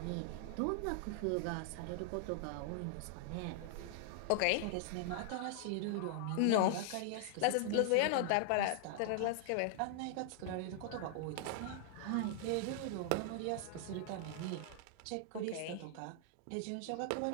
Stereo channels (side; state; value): both; different; correlation -0.01